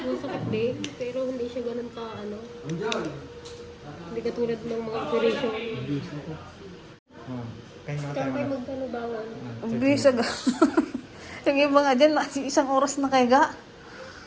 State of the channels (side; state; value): both; identical; correlation 1.00